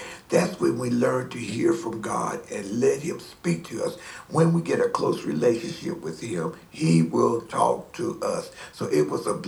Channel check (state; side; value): identical; both; correlation 1.00